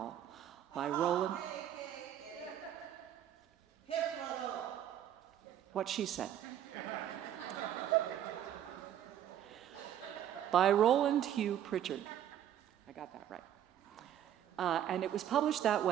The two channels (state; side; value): quieter; left; 10.7 dB